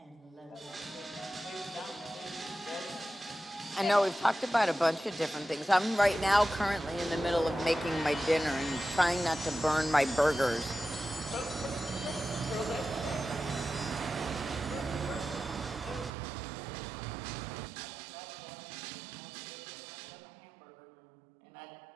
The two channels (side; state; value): left; drops out; at 16.1 s